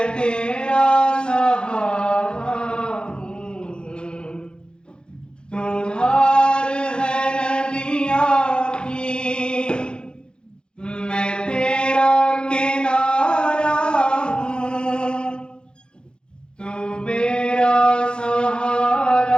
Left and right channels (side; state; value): right; late; 0.050 ms